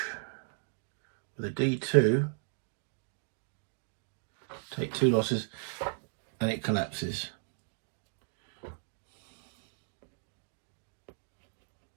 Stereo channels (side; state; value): left; silent; digital silence